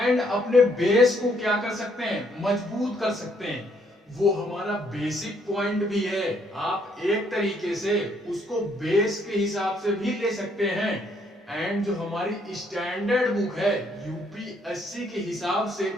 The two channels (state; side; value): normal; both; correlation 0.69